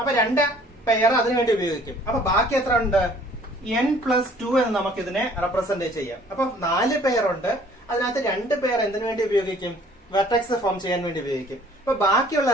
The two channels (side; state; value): both; normal; correlation 0.55